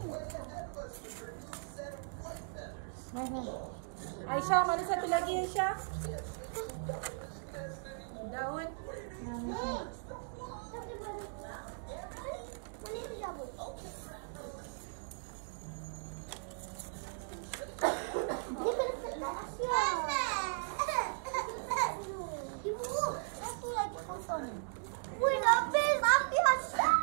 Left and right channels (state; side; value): silent; left; digital silence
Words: mana satu lagi Aisyah? Daun. Wih, habis Aisyah.